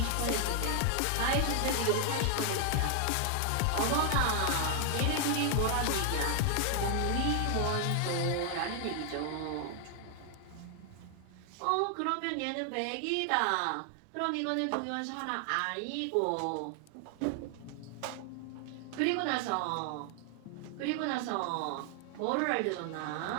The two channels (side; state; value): both; different; correlation 0.00